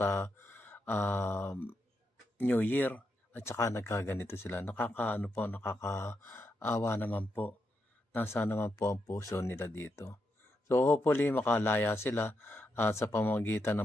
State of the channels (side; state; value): both; normal; correlation 0.84